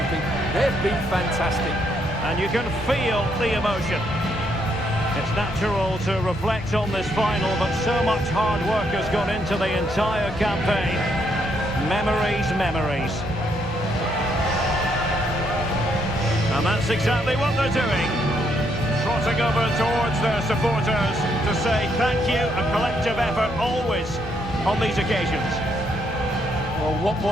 They've been fantastic. And you can feel the emotion. It's natural to reflect on this final, but so much hard work has gone into the entire campaign. Memories, memories. And that's exactly what they're doing. Trotting over towards their supporters to say thank you, a collective effort always on these occasions. Well, what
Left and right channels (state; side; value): normal; both; correlation 0.74